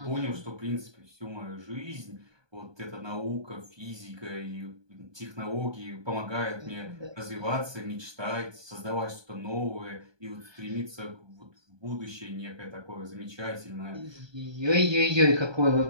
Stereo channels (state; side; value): late; left; 1.2 ms